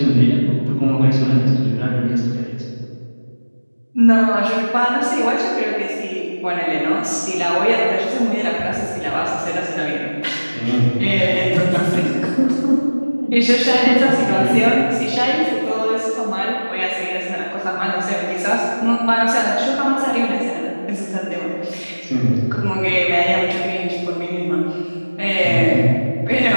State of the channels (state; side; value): inverted; both; correlation -1.00